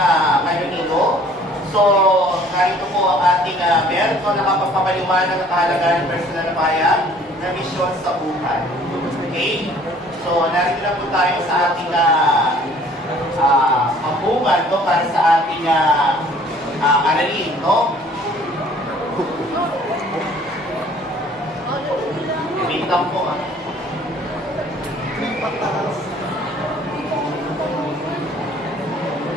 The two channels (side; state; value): both; normal; correlation 0.55